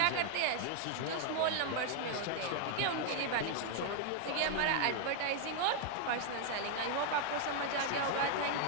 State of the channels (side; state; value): both; different; correlation 0.00